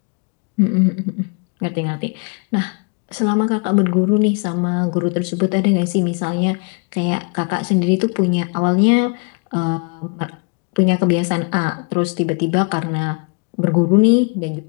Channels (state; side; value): quieter; right; 35.4 dB